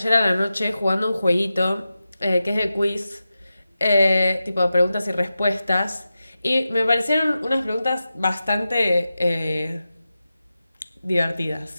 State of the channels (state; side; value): inverted; both; correlation -0.92